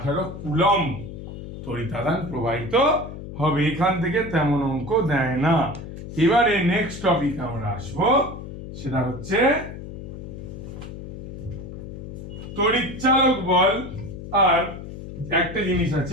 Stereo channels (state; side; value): noise; left; hum, 10 dB below the sound